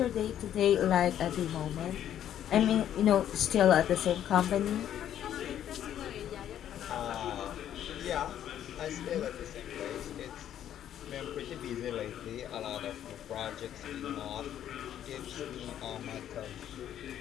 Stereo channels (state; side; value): quieter; right; 10.7 dB